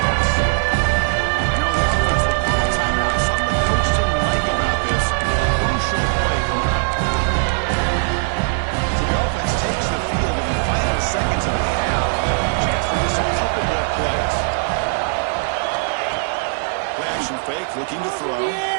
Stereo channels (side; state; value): left; silent; 66 dB below the other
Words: Now the offense will call a timeout. Something the coach didn't like about this. Crucial play coming up. So the offense takes the field in the final seconds of the half. Chance for just a couple more plays. Play action fake, looking to throw.